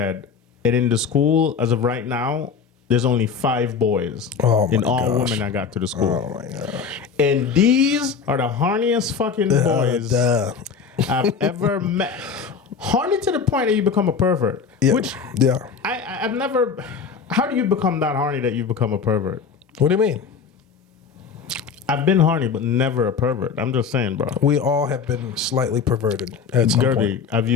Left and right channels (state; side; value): quieter; right; 6.0 dB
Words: And in the school, as of right now, there's only 5 boys. Oh my and all gosh. women that got to the school. Oh my gosh. And these are the horniest fucking boys Duh. I've ever met. Horny to the point that you become a pervert. Yeah. Which Yeah. I've never. How do you become that horny that you become a pervert? What do you mean? I've been horny, but never a pervert. I'm just saying, bro. We all have been slightly perverted at some point. Guerby, have